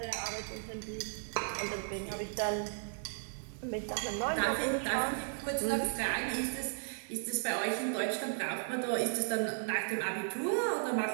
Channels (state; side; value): silent; left; digital silence